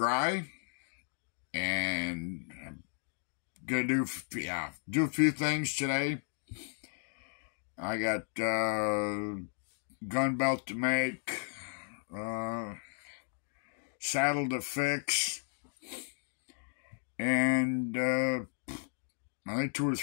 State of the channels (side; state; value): right; silent; 55 dB below the other